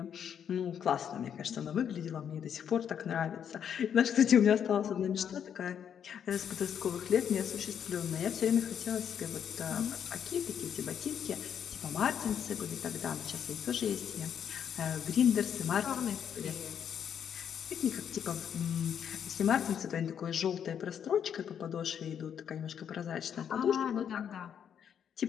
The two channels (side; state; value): right; quieter; 8.5 dB